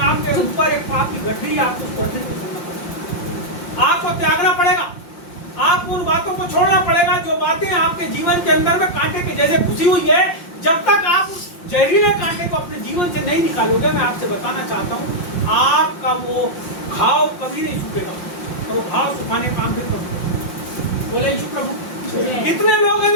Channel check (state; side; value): late; right; 5.7 ms